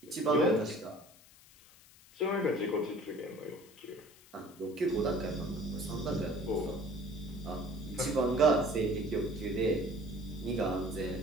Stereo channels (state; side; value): noise; left; hiss, 24 dB below the sound